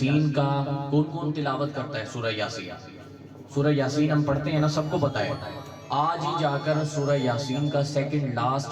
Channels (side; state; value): both; identical; correlation 1.00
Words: کا کون کون تلاوت کرتا ہے؟ سورہ یاسین، سورہ یاسین ہم پڑھتے ہیں نا، سب کو پتہ ہے۔ آج ہی جا کر سورہ یاسین کا سیکنڈ